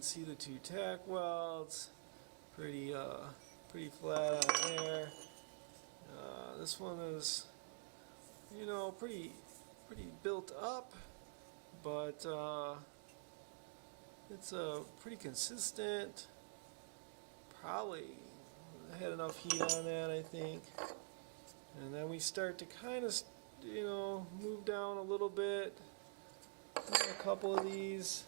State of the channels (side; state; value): left; silent; digital silence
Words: see the two tack welds. Pretty flat on there. This one is, pretty built up, but it's pretty consistent. Probably had enough heat on that, I think. And then we start to kind of, move down a little bit. A couple of these.